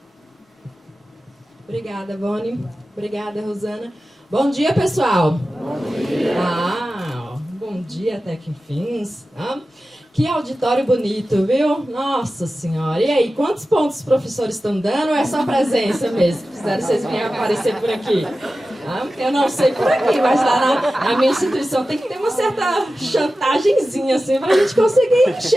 Obrigada, Vone. Obrigada, Rosana. Bom dia, pessoal. Bom dia. Bom dia até que enfim. Que auditório bonito, viu? Nossa Senhora. E aí, quantos pontos os professores estão dando ou é só presença mesmo? Fizeram vocês virem aparecer por aqui? Eu não sei por aqui, mas lá na minha instituição tem que ter uma certa chantagemzinha, assim, para a gente conseguir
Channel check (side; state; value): both; normal; correlation 0.94